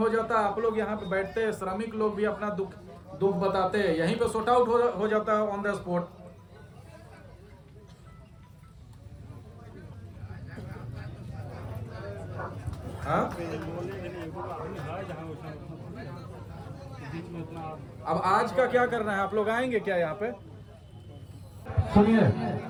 जाता, आप लोग यहाँ पे बैठते, श्रमिक लोग भी अपना दुख बताते, यहीं पे सॉर्ट आउट हो जाता है ऑन द स्पॉट। हाँ, अब आज का क्या करना है? आप लोग आएंगे क्या यहाँ पे? सुनिए,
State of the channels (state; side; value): identical; both; correlation 1.00